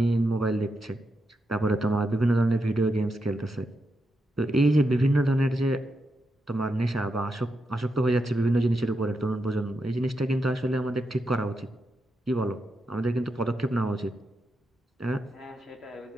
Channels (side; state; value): both; normal; correlation 0.85